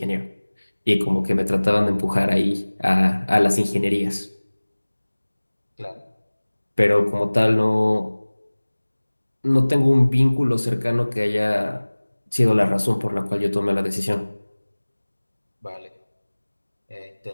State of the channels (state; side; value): inverted; both; correlation -1.00